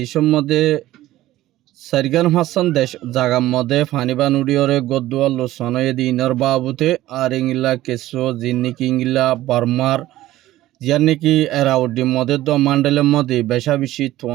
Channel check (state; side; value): quieter; left; 15.4 dB